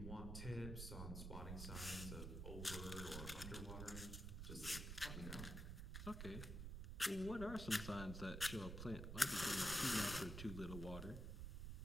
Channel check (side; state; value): right; noise; rumble, 5 dB below the sound